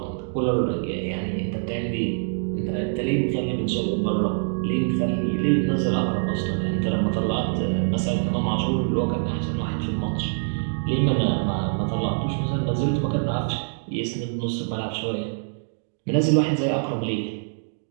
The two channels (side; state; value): left; silent; digital silence